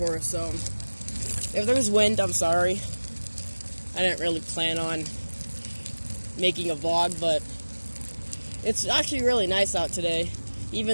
so if there's wind, I'm sorry. I didn't really plan on making a vlog, but it's actually really nice out today.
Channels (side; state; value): both; inverted; correlation -1.00